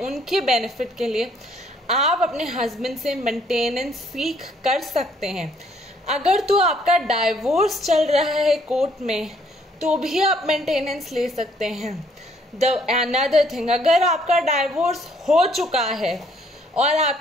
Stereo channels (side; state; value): both; normal; correlation 0.65